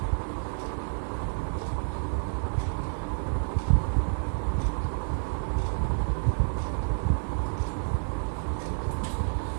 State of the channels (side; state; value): left; silent; digital silence